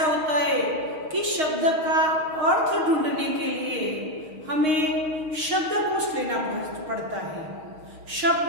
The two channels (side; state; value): left; late; 6.5 ms